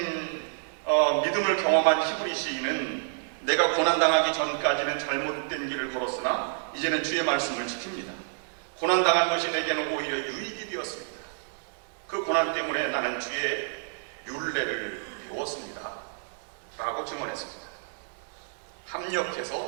믿음을 경험한 히브리 시인은 내가 고난당하기 전까지는 잘못된 길을 걸었으나 이제는 주의 말씀을 지킵니다. 고난당한 것이 내게는 오히려 유익이 되었습니다. 그 고난 때문에 나는 주의 율례를 배웠습니다. 라고 증언했습니다.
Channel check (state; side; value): silent; left; digital silence